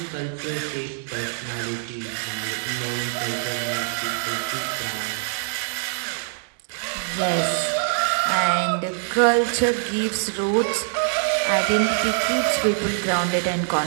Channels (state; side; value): silent; left; digital silence